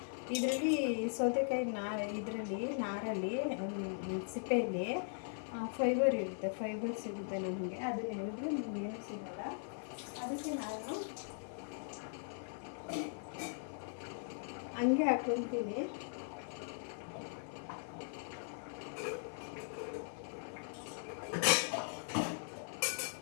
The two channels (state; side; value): silent; right; digital silence